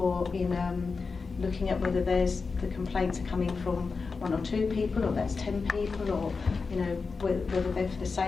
in looking at whether the complaints are coming from 1 or 2 people, or that's 10 people, or you know whether they're for the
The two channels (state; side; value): quieter; right; 4.6 dB